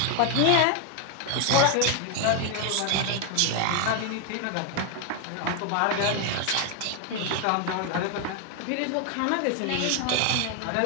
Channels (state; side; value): different; both; correlation 0.00